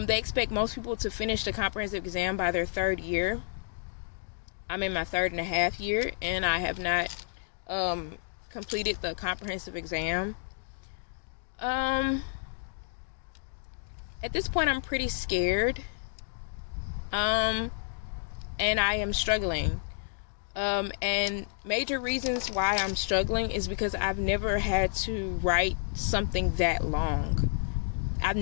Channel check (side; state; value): right; silent; digital silence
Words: expect most people to finish the comprehensive exam by their 3rd year. I'm in my 3.5 year, and I have not completed the comprehensive exam. At this point, I'm pretty scared, and I am struggling. And major reasons why I'm struggling is because I've never had to write something that long. I've